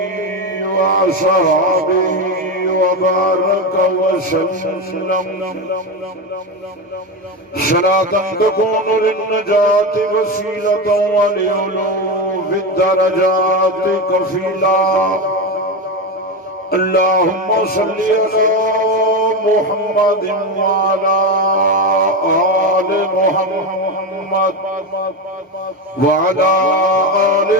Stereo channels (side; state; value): both; normal; correlation 0.16